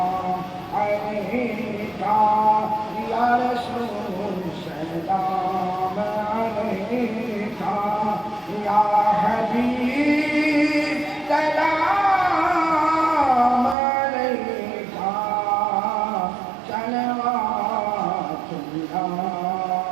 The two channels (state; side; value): drops out; left; at 13.8 s